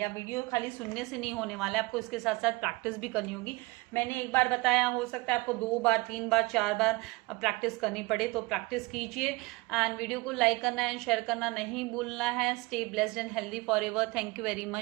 वीडियो खाली सुनने से नहीं होने वाला है, आपको इसके साथ साथ प्रैक्टिस भी करनी होगी. मैंने एक बार बताया, हो सकता है आपको 2 बार 3 बार 4 बार प्रैक्टिस करनी पड़े, तो प्रैक्टिस कीजिए. एंड वीडियो को लाइक करना एंड शेयर करना नहीं भूलना है. Stay blessed and healthy forever. Thank you very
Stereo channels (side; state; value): left; quieter; 23.7 dB